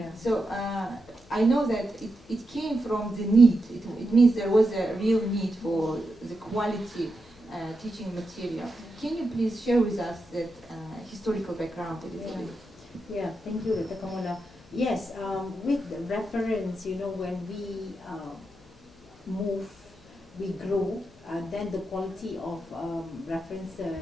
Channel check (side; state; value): left; noise; hum, 26 dB below the sound